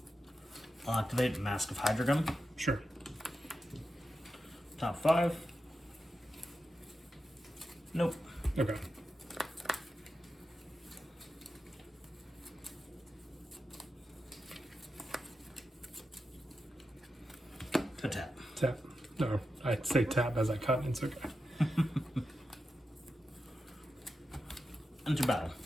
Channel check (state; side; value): normal; both; correlation 0.89